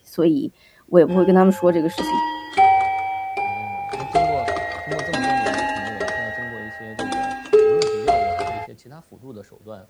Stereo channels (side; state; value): both; identical; correlation 1.00